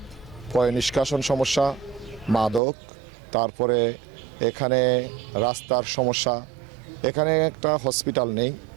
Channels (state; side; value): drops out; left; at 2.6 s